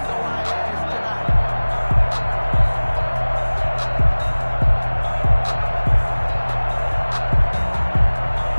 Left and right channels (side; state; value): both; inverted; correlation -1.00